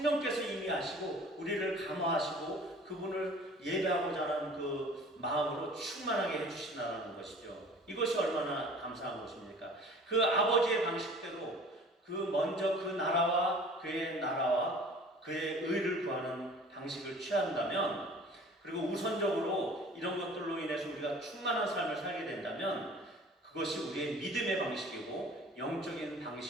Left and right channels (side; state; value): both; normal; correlation 0.46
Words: 이미 아시고 우리를 감화하시고 그분을 예배하고자 하는 그 마음으로 충만하게 해주신다는 것이죠. 이것이 얼마나 감사한 것입니까? 그 아버지의 방식대로 먼저 그 나라와 그의 의를 구하는 방식을 취한다면, 그리고 우선적으로 이런 것들로 인해서 우리가 충만한 삶을 살게 된다면 그것이 우리의 믿음의 방식이고 영적인